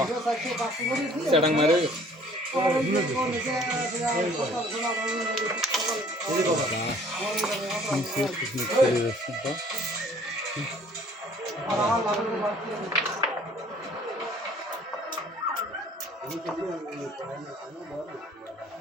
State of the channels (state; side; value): normal; both; correlation 0.55